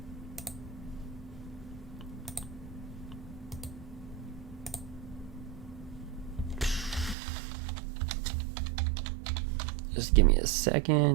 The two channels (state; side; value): drops out; left; at 7.2 s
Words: Just give me a